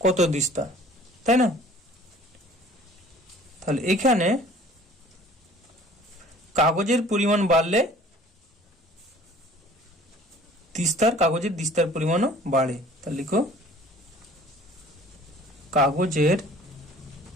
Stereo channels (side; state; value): both; normal; correlation 0.50